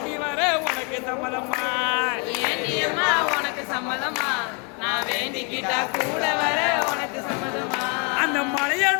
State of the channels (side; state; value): right; quieter; 35.2 dB